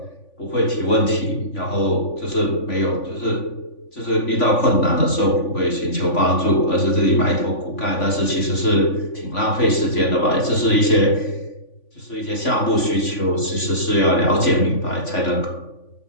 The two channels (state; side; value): late; right; 3.5 ms